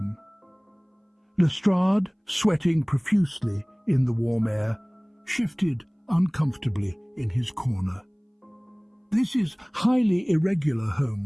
Lestrade, sweating profusely in the warm air, shifted uncomfortably in his corner. "This is highly irregular,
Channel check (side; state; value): both; identical; correlation 1.00